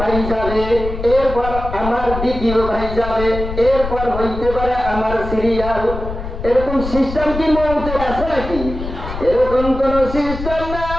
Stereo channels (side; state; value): left; noise; rumble, 7 dB below the sound